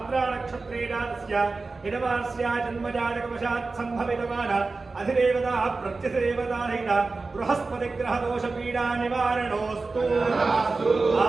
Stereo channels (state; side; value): quieter; left; 3.8 dB